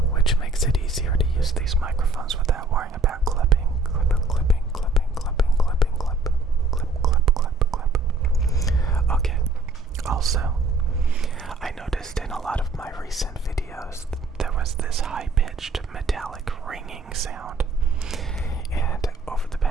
which makes it easier to use these microphones without worrying about clipping. Okay, also, I noticed in a lot of my recent videos there was this high-pitched metallic ringing sound, and over the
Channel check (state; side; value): quieter; left; 3.2 dB